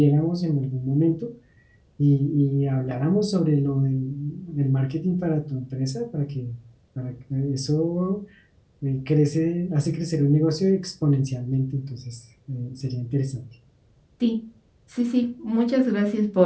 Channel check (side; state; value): both; identical; correlation 1.00